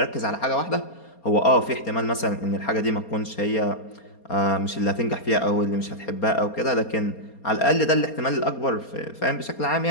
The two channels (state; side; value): late; right; 4.3 ms